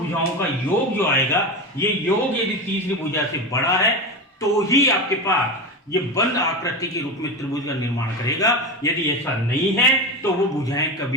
का योग जो आएगा, ये योग यदि तीसरी भुजा से बड़ा है तो ही आपके पास ये बंद आकृति के रूप में त्रिभुज का निर्माण करेगा। यदि ऐसा नहीं है तो वो भुजाएं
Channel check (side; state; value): both; normal; correlation 0.21